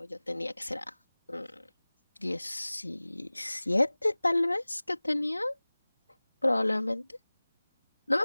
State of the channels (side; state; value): both; inverted; correlation -1.00